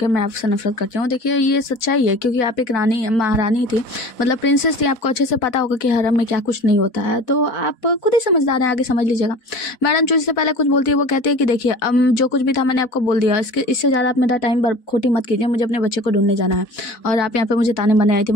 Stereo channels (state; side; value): late; right; 4.1 ms